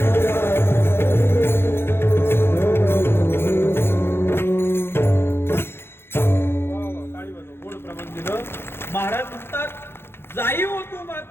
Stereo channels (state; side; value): late; right; 0.11 ms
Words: महाराज म्हणतात, जाई हो तू